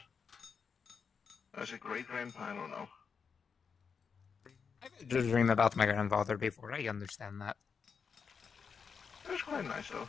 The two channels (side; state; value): right; quieter; 6.0 dB